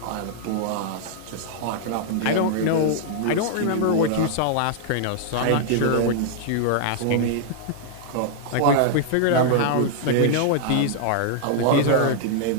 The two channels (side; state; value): both; different; correlation -0.01